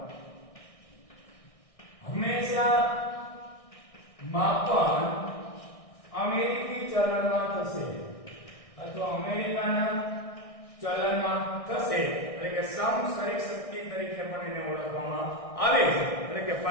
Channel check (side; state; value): right; late; 1.6 ms